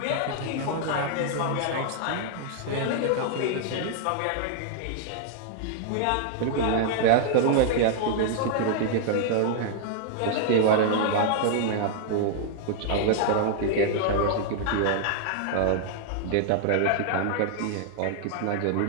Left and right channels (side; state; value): both; different; correlation -0.01